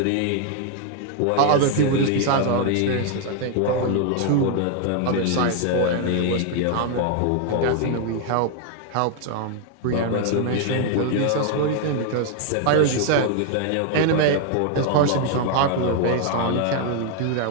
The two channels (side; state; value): both; different; correlation 0.00